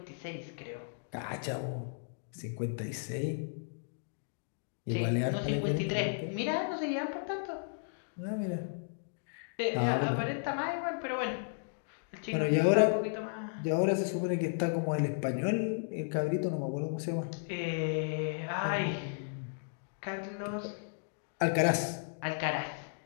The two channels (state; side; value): silent; right; digital silence